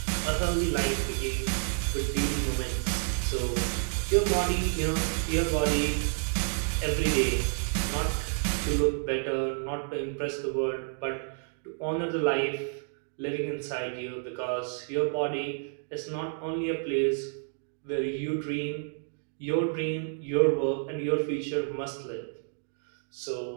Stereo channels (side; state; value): left; silent; digital silence